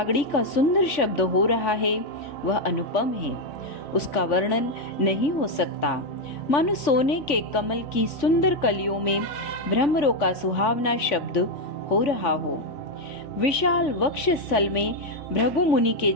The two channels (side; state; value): right; late; 3.5 ms